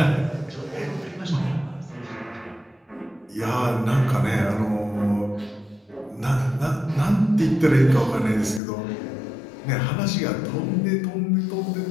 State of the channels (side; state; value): right; drops out; at 8.6 s